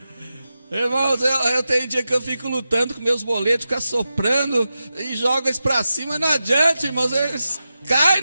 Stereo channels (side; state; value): both; inverted; correlation -0.91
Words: Irmãos, eu tenho dia que eu fico lutando com meus boletos, ficar soprando e jogo eles para cima, não adianta, irmãos, eles caem